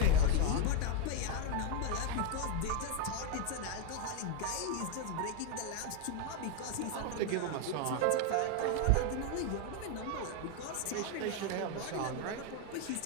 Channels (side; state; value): both; different; correlation 0.01